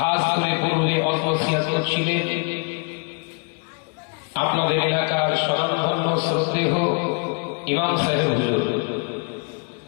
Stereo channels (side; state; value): right; quieter; 35.1 dB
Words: করে পূর্বে অল্পসিয়াত ছিলেন আপনাদের এলাকার স্বনামধন্য শ্রদ্ধেয় ইমাম সাহেব হুজুর,